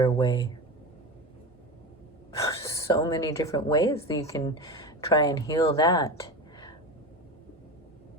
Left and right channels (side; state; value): both; normal; correlation 0.25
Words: way. So many different ways that you can try and heal that,